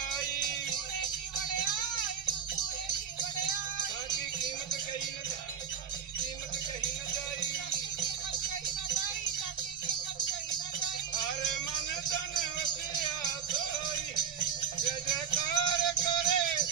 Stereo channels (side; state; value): left; quieter; 7.7 dB